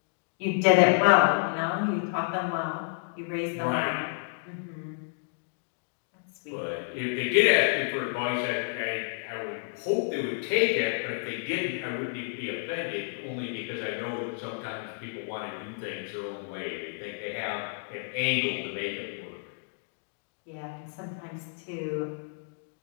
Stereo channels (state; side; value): silent; right; digital silence